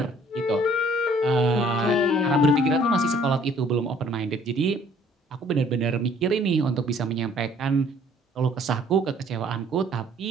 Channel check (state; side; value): normal; both; correlation 0.58